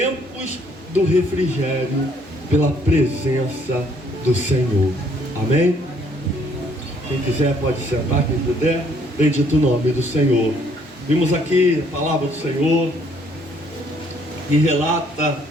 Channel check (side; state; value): both; normal; correlation 0.65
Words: do refrigério pela presença do Senhor. Amém? Quem quiser pode sentar, quem puder. Bendito o nome do Senhor. Vimos aqui a palavra do Senhor que relata